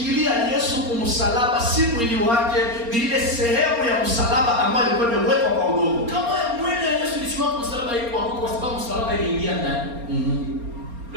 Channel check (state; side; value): late; left; 4.3 ms